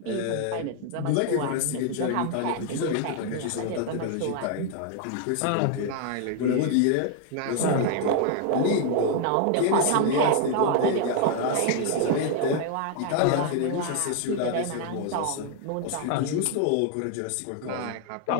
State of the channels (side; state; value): both; different; correlation 0.00